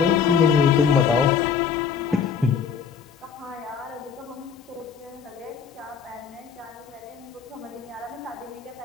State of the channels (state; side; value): quieter; right; 6.6 dB